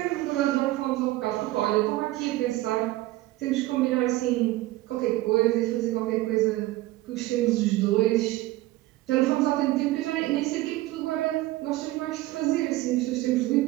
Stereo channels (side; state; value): left; quieter; 17.6 dB